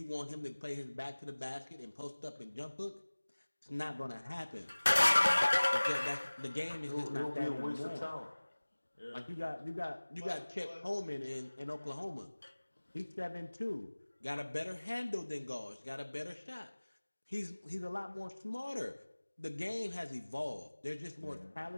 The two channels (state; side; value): inverted; both; correlation -1.00